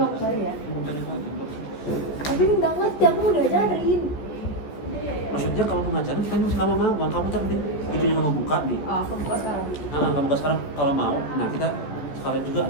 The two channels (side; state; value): right; late; 14 ms